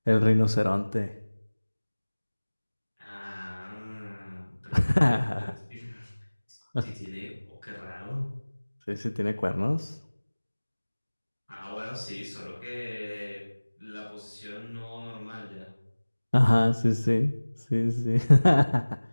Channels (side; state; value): both; inverted; correlation -1.00